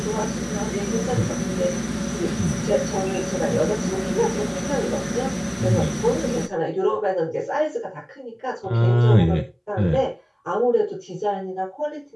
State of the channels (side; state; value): both; identical; correlation 1.00